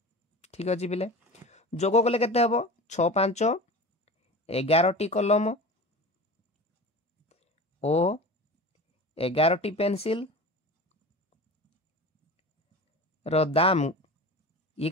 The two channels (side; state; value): both; normal; correlation 0.33